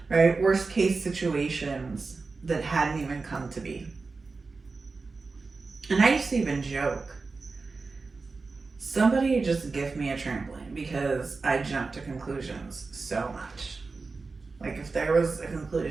Right? Worst case situations that hadn't even come to be. And I used to even joke, somebody just give me a trampoline because I jumped to conclusions so much. Like if there was a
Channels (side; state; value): left; quieter; 4.1 dB